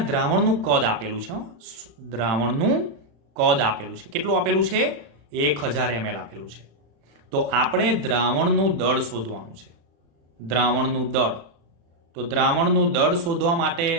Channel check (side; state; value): left; late; 36 ms